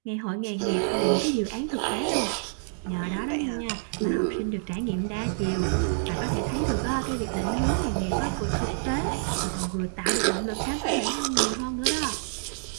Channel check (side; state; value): left; silent; digital silence